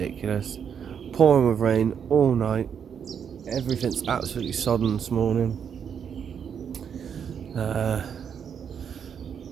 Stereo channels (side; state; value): left; quieter; 7.6 dB